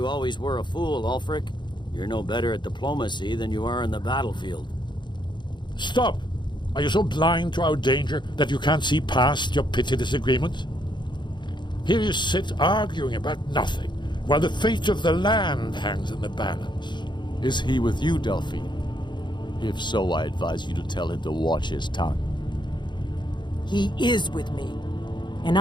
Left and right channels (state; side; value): late; right; 0.22 ms